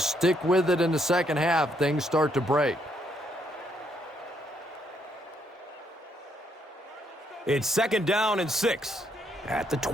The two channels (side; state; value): both; normal; correlation 0.73